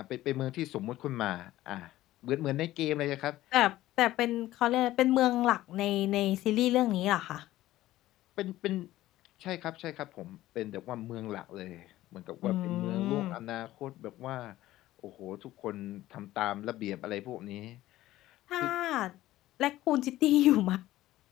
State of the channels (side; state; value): right; quieter; 15.4 dB